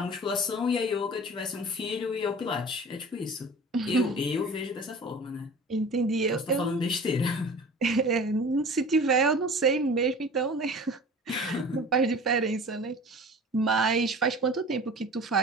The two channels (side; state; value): both; normal; correlation 0.40